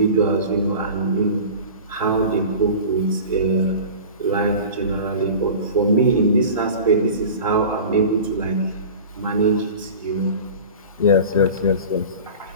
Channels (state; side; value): inverted; both; correlation -0.37